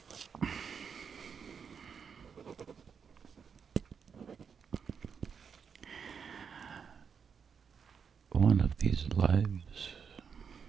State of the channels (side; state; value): left; quieter; 6.5 dB